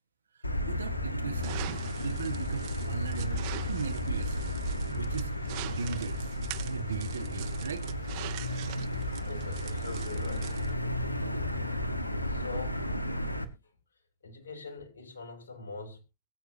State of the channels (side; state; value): both; inverted; correlation -0.61